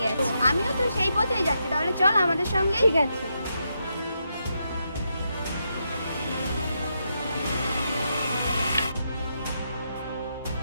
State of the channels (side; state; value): both; inverted; correlation -0.82